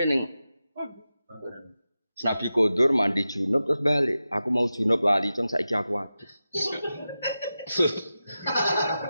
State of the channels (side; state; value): both; inverted; correlation -0.92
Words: ning Nabi Kodur mandi junub terus balik. Aku mau junub lali, cung saiki aku hadis.